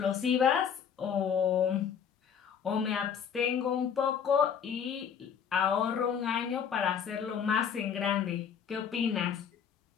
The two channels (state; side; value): quieter; right; 7.6 dB